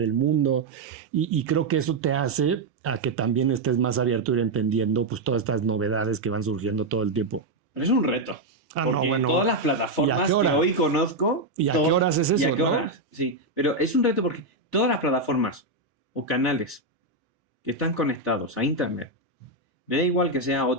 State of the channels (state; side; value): quieter; left; 3.0 dB